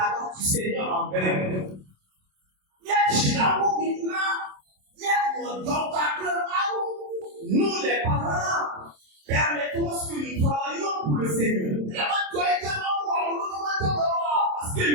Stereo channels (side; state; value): left; late; 27 ms